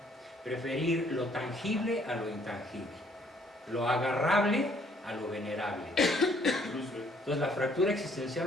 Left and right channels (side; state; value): both; normal; correlation 0.64